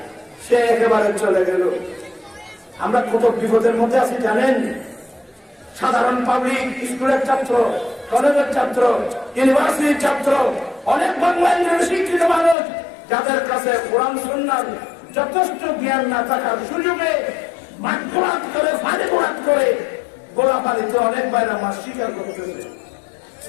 সে একেবারে চলে গেল। আমরা কত বিপদের মধ্যে আছি জানেন? সাধারণ পাবলিক স্কুলের ছাত্র, কলেজের ছাত্র, ইউনিভার্সিটির ছাত্র, অনেক বাংলায় শিক্ষিত মানুষ যাদের কাছে কোরআন সুন্নাহর যথেষ্ট জ্ঞান না থাকার সুযোগে মাঠঘাট করে ফাঁদে ঘোরাট করে গোলাপালিতে অনেক বাইরে মাস স্বীকার করতেছে।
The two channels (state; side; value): drops out; right; at 12.6 s